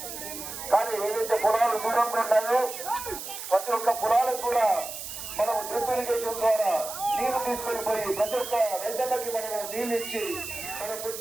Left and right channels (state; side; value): noise; right; hiss, 9 dB below the sound